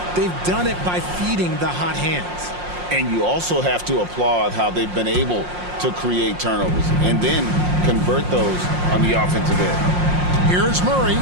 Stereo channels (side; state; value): left; late; 5.6 ms